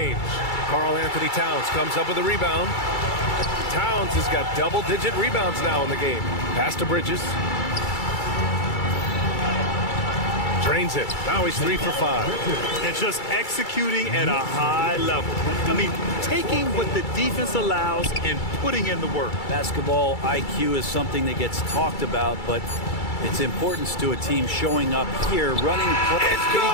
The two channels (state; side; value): late; right; 2.3 ms